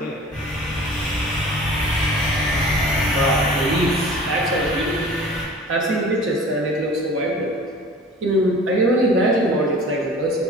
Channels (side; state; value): both; normal; correlation 0.43